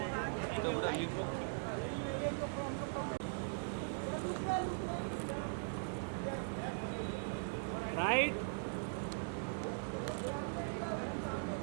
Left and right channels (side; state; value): left; silent; digital silence